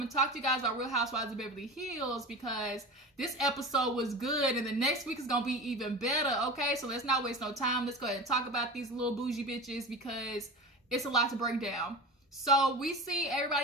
and talk to you guys about Real Housewives of Beverly Hills, because this episode was good, and the next week is gonna be even better. Okay, so let's not waste no time. Let's go ahead and talk about these little bougie bitches, because it's a lot to break down. So we see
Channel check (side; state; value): both; normal; correlation 0.31